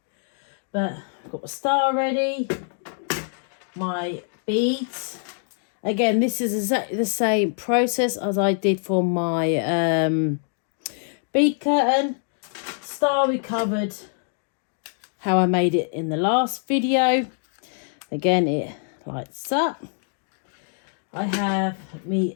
But I've got the star ready, my beads. Again, this is exactly the same process as I did for my bead curtain. Star we covered how I made it in the last video. Again, it lights up. I have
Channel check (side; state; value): right; silent; 62 dB below the other